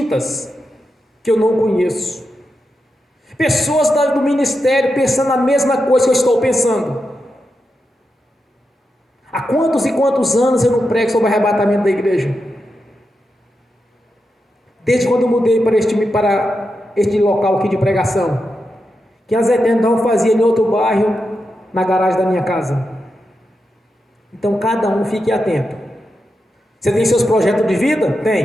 que eu não conheço. Pessoas do ministério pensando a mesma coisa que eu estou pensando. Há quantos e quantos anos eu não prego sobre o arrebatamento da igreja? Desde quando eu mudei para este local aqui de pregação, que a Zé Tendão fazia em outro bairro, na garagem da minha casa. Então cada um fique atento. Você tem seus projetos de vida?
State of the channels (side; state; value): both; normal; correlation 0.87